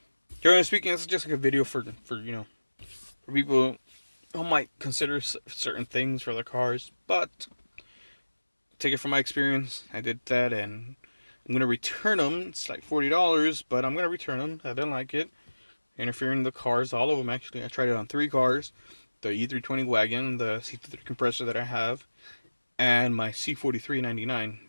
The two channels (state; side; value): inverted; both; correlation -1.00